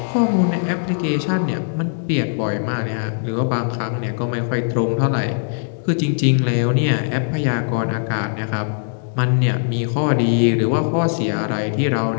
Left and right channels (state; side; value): silent; right; digital silence